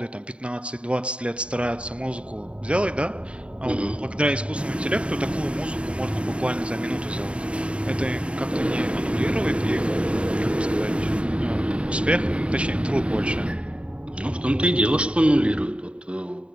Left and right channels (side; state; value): left; late; 0.059 ms